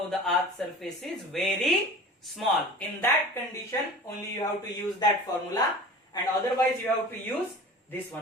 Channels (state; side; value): normal; both; correlation 0.39